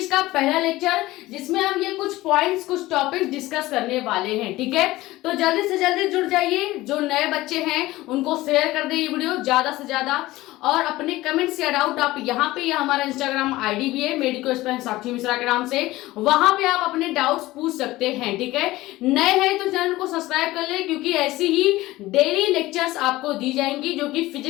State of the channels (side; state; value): right; quieter; 17.9 dB